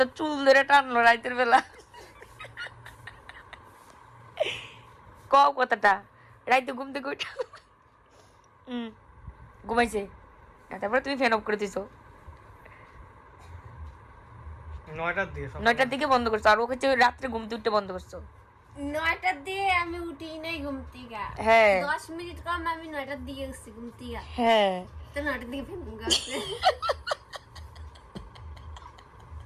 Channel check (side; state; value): both; identical; correlation 1.00